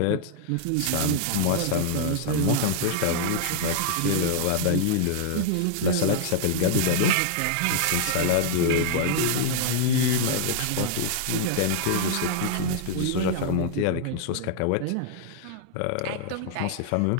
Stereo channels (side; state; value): both; different; correlation -0.01